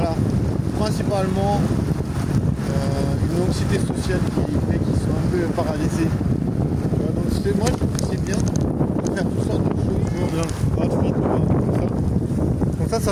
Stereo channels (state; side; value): identical; both; correlation 1.00